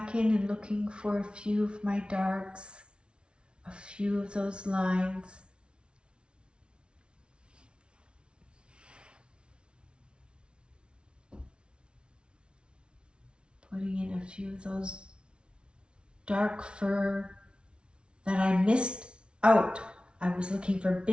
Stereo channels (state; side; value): late; left; 0.057 ms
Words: in and looking for a few of my darks, a few of those lines. Putting in a few of those dark fur that I missed out. I was looking for